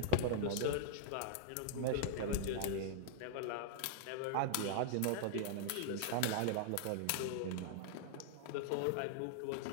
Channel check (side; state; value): both; different; correlation -0.01